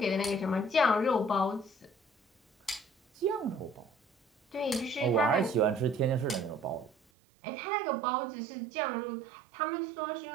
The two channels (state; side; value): drops out; left; at 7.0 s